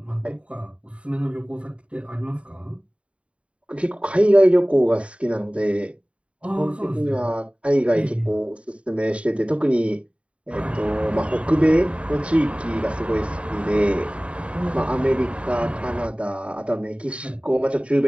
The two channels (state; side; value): late; left; 0.062 ms